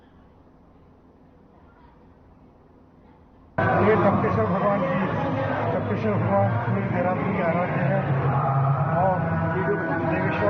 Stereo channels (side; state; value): both; identical; correlation 1.00